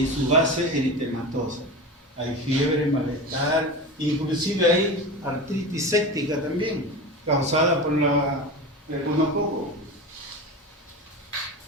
su base eritematosa. Hay fiebre, malestar, inclusive hay artritis séptica también, causada por el gonococo.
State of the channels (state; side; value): normal; both; correlation 0.27